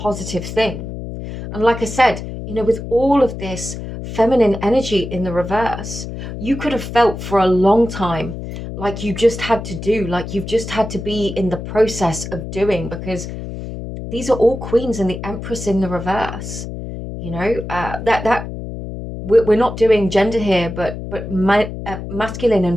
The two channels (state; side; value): noise; left; hum, 8 dB below the sound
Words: thing. And like I said, you know, with all of this feminine energy in the reverse, you could have felt for a long time like you just had to do, like you've just had to be in the process of doing, because these are all queens and the empress in the reverse. You know, that we're not doing gender here, but masculine